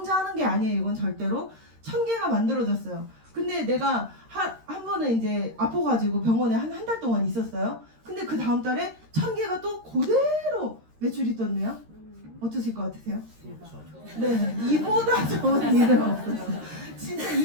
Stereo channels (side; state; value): left; late; 13 ms